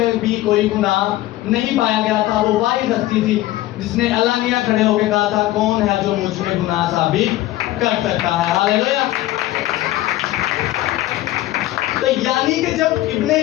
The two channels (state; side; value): quieter; right; 15.8 dB